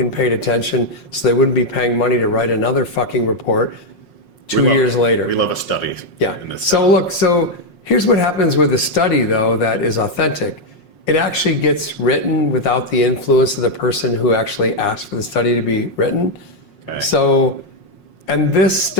paid attention so they wouldn't be paying money to write another fucking report 2 years later. We love a study. Yeah. So here's what happens with a study, though, that is authentic. It actually gets written without the influence of the person who actually asked for the study to be written. Okay. So, and this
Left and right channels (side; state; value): right; late; 5.5 ms